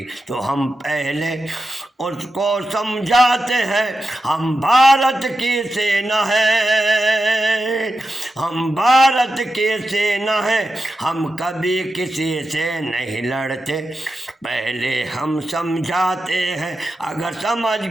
तो हम पहले उसको समझाते हैं। हम भारत की सेना है, हम भारत की सेना है, हम कभी किसी से नहीं लड़ते, पहले हम समझाते हैं। अगर समझ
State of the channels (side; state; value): both; normal; correlation 0.90